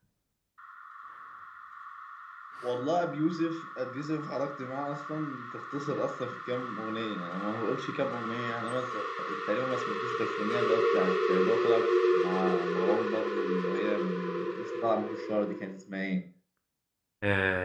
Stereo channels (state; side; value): identical; both; correlation 1.00